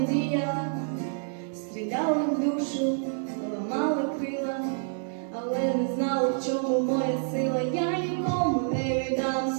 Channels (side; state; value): left; silent; digital silence